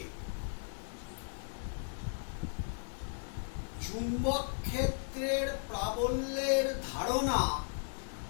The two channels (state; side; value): silent; right; 54 dB below the other